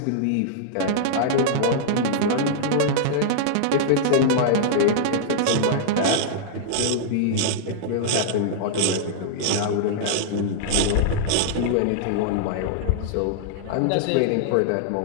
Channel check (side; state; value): both; different; correlation -0.01